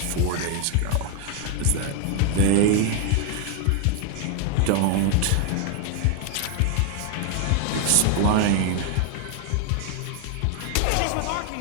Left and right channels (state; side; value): different; both; correlation 0.00